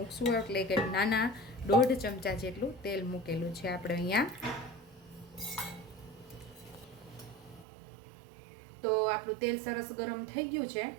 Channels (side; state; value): left; drops out; at 7.7 s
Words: એટલે કે નાના 1.5 ચમચા જેટલું તેલ મૂકેલું છે આપણે અહીંયા. તો આપણું તેલ સરસ ગરમ થઈ ગયું છે.